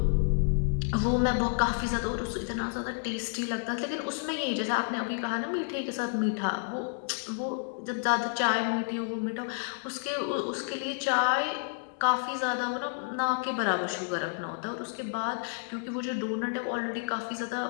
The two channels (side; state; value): right; silent; digital silence